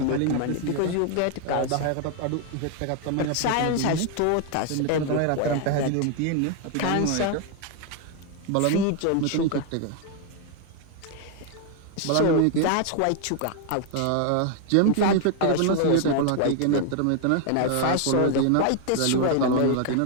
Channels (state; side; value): different; both; correlation 0.00